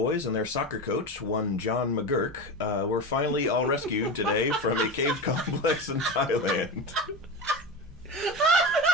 and their soccer coach, one John McGurk, were finally all rescued today from a cave complex in Thailand.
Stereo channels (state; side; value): normal; both; correlation 0.23